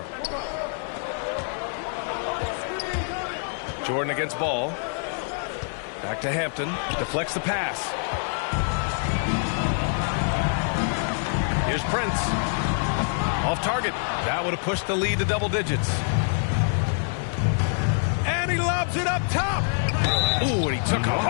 Jordan against Ball. Back to Hampton. Deflects the pass. Here's Prince. Off target. That would have pushed the lead to double digits. And he lobs it up top. Ooh, and he took a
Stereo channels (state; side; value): silent; right; 61 dB below the other